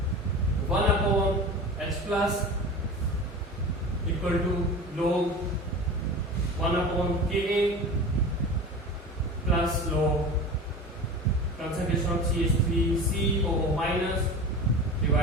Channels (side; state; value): both; normal; correlation 0.33